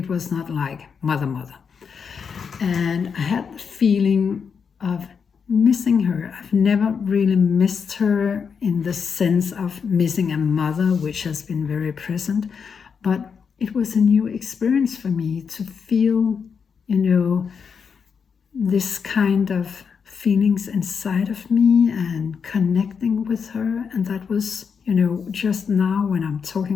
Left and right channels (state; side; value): quieter; right; 6.3 dB